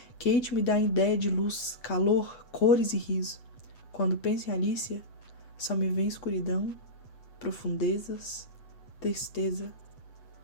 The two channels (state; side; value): late; right; 8.1 ms